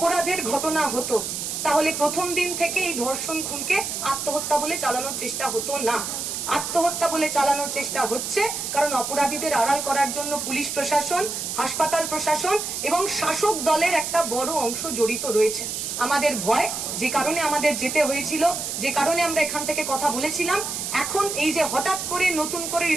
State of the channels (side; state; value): right; noise; hiss, 4 dB below the sound